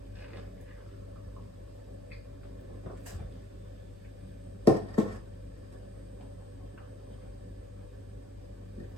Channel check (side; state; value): both; normal; correlation 0.52